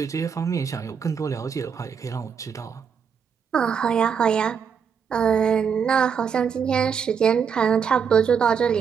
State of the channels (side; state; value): left; quieter; 6.9 dB